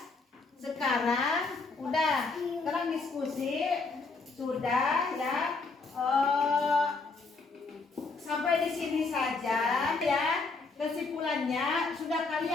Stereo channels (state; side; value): quieter; right; 4.0 dB